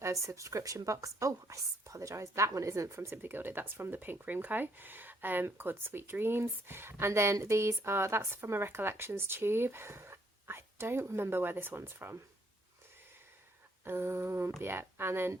a subscription box. Oh, I apologise, that one isn't from Simply Gilded, that's from the Pink Room Co. Called Sweet Dreams. And then these are, that's from a Recollections tube. I don't remember where this one's from. Yeah, and then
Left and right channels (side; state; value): both; normal; correlation 0.69